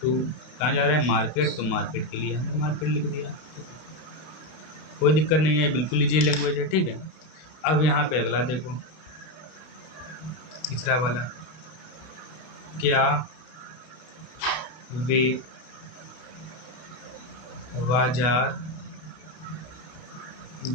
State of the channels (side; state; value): right; late; 32 ms